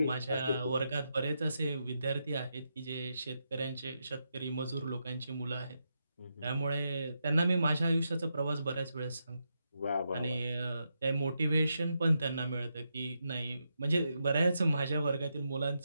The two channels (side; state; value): both; inverted; correlation -0.84